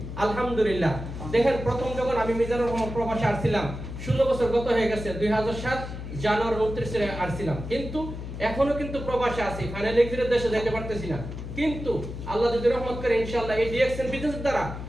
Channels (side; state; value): left; noise; hum, 8 dB below the sound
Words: আলহামদুলিল্লাহ। দেখেন, প্রথম যখন আমি মিজানুর রহমান প্রবাসে আসছিলাম, 16 বছর গত হয়ে গেছে। 2007 জানুয়ারি 29 আসছিলাম, কিন্তু এখনো কিন্তু প্রবাসে আছি। ফাইনাল এক্সিটের দেশে যেতে পারতেছি না। কিন্তু আল্লাহ যদি রহমত করে ইনশাআল্লাহ এই ডিএক্সএন বিজনেসের দ্বারা